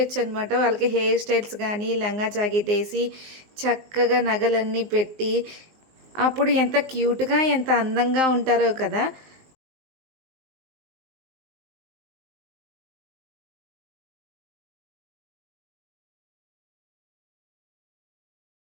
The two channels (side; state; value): left; late; 19 ms